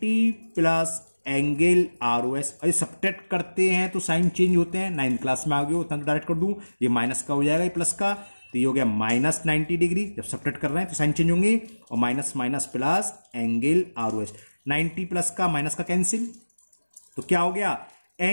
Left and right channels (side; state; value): both; inverted; correlation -1.00